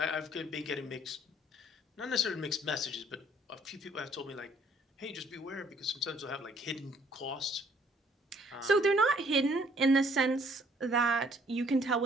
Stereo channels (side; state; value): both; normal; correlation 0.61